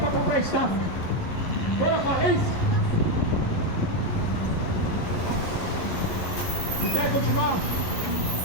comprar estátua. Foi a falência. Se quer continuar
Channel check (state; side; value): late; right; 11 ms